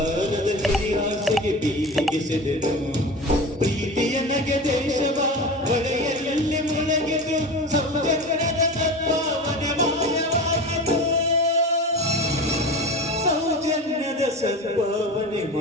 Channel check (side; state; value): both; normal; correlation 0.30